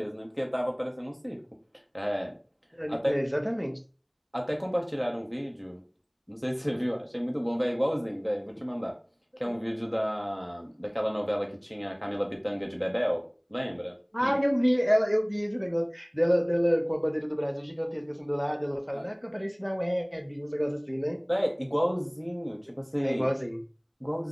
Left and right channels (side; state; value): both; identical; correlation 1.00